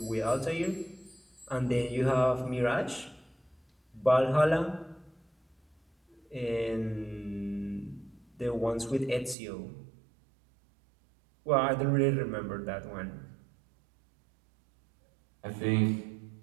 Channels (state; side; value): drops out; left; at 9.3 s